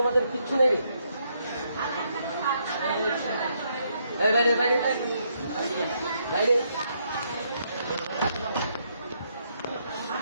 কিচ্ছু নেই বাইরে বাইরে বাইরে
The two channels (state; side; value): inverted; both; correlation -0.75